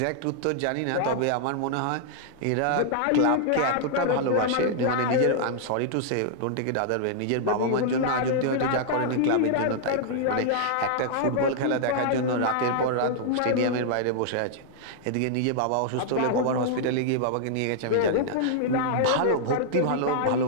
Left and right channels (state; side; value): different; both; correlation -0.01